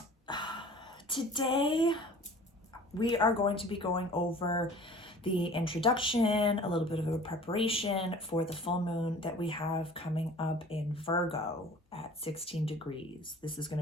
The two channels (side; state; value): both; normal; correlation 0.46